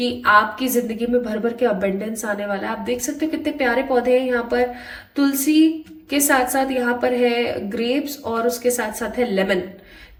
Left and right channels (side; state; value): both; identical; correlation 1.00